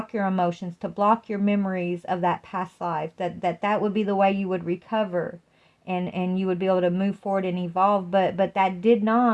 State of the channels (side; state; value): both; identical; correlation 1.00